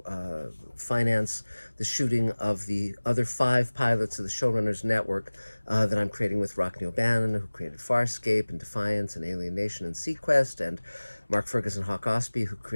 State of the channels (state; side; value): inverted; both; correlation -1.00